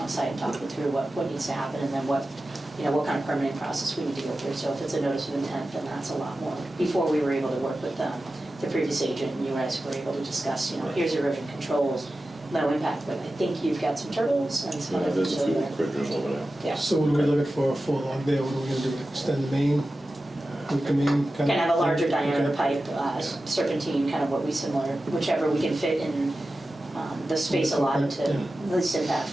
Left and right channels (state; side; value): normal; both; correlation 0.94